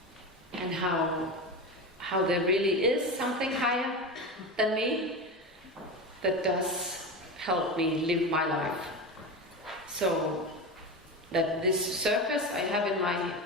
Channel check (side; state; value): both; normal; correlation 0.22